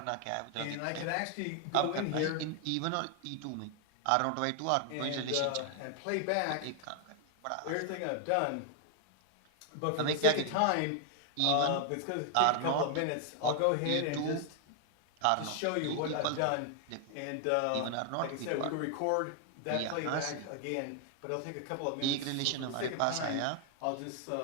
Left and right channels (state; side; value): different; both; correlation 0.00